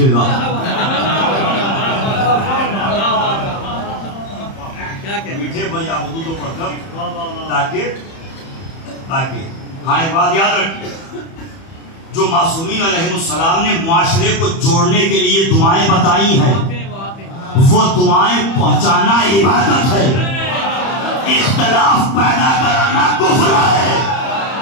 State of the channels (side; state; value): right; late; 31 ms